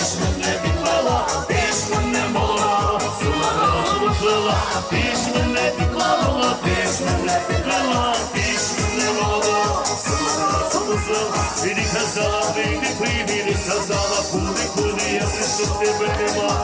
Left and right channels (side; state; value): both; identical; correlation 1.00